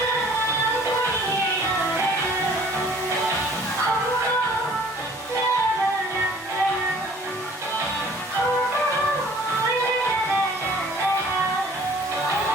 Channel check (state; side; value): normal; both; correlation 0.52